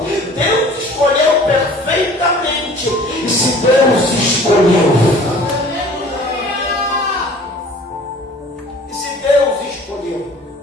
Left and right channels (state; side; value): normal; both; correlation 0.48